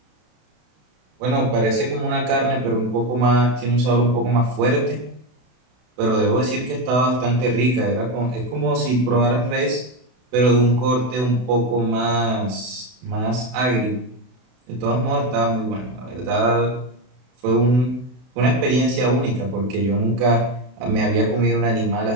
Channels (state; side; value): late; left; 32 ms